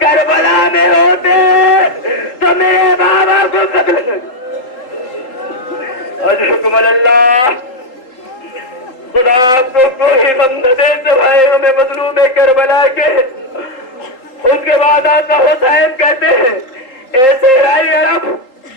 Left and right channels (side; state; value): right; late; 3.8 ms